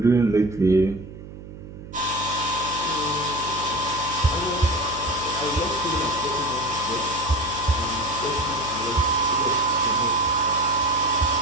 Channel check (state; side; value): noise; right; hum, 14 dB below the sound